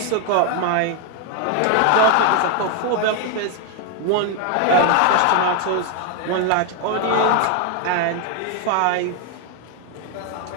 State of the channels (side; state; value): both; different; correlation 0.01